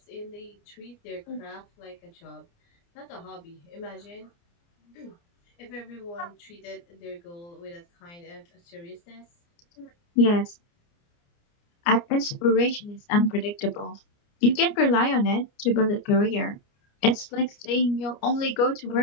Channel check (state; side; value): late; right; 29 ms